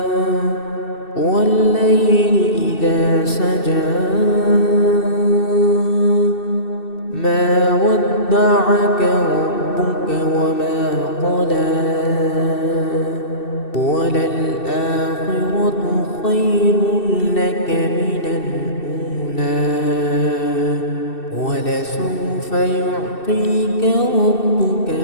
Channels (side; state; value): right; late; 2.7 ms